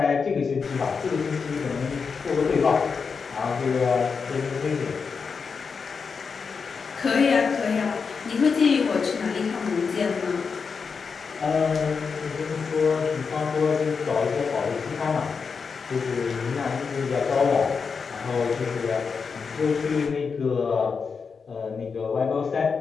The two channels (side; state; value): right; quieter; 5.4 dB